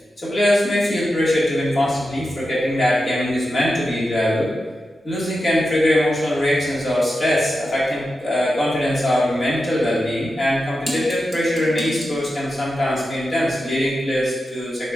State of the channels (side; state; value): both; normal; correlation 0.90